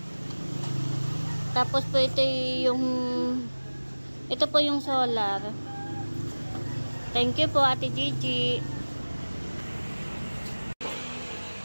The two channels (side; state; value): both; inverted; correlation -1.00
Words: Tapos po ito po yung solar. Thank you po Ate Gigi.